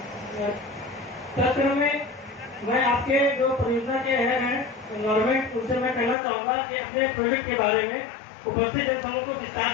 तत्क्रम में मैं आपके जो परियोजना के हेड हैं गवर्नमेंट, उनसे मैं कहना चाहूँगा कि अपने प्रोजेक्ट के बारे में उपस्थित जनसमूह को विस्तार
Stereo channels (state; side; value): drops out; right; at 6.2 s